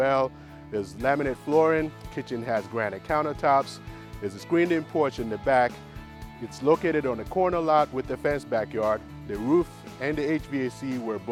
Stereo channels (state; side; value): identical; both; correlation 1.00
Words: There's laminate flooring, kitchen has granite countertops. There's a screened-in porch in the back. It's located on a corner lot with a fenced backyard. The roof and the HVAC were